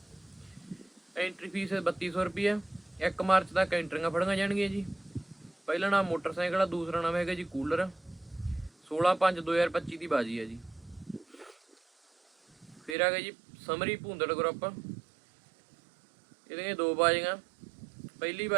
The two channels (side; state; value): left; drops out; at 13.0 s